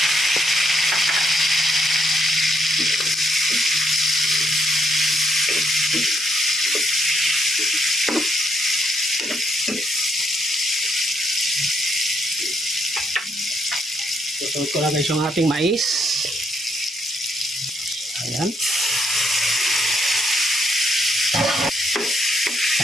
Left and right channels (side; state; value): both; normal; correlation 0.74